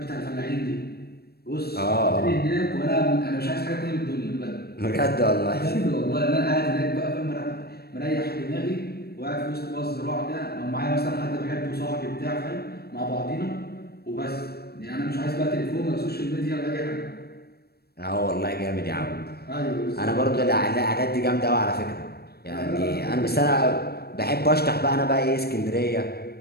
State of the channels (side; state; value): right; late; 0.46 ms